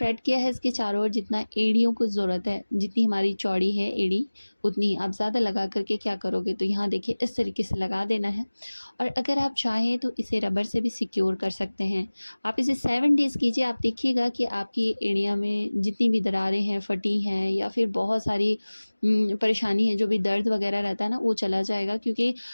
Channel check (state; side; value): inverted; both; correlation -1.00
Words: किया है इसके चारों ओर जितना एड़ियों को ज़रूरत है, जितनी हमारी चौड़ी है एड़ी, उतनी ही। आप ज़्यादा लगा करके क्या करोगे, तो यहाँ देखिए इस तरीके से लगा देना है। और अगर आप चाहें तो इसे रबर से भी सिक्योर कर सकते हैं। आप इसे 7 डेज़ कीजिए, आप देखिएगा कि आपकी एड़ियाँ में जितनी भी दरारें हैं, फटी हैं, या फिर बहुत सारी परेशानी है, जो भी दर्द वगैरह रहता है ना, वो चला जाएगा, क्योंकि